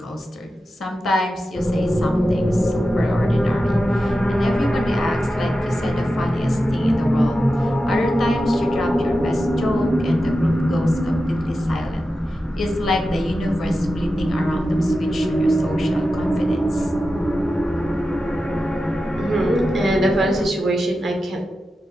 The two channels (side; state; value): both; normal; correlation 0.92